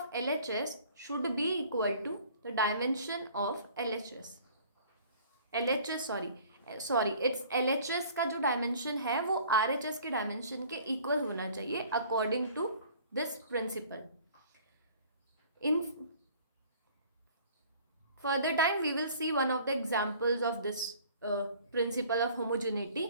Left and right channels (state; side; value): inverted; both; correlation -0.51